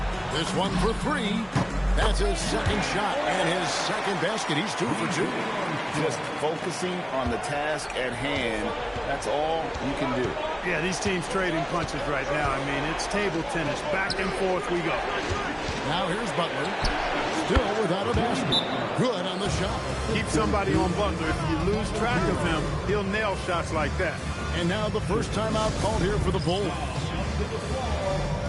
This one for 3. That's his second shot and his second basket. He's 2 for 2. Just focusing on the task at hand. That's all you can do. Yeah, these teams trading punches right now. I mean, it's table tennis. Back and forth we go. Now here's Butler. Still without a basket. Good on the shot. Keep somebody on Butler. If you lose track of him, he'll nail shots like that. And now the first timeout called here for the Bulls.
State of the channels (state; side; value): identical; both; correlation 1.00